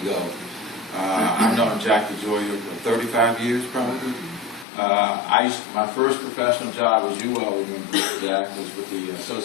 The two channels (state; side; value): drops out; right; at 4.7 s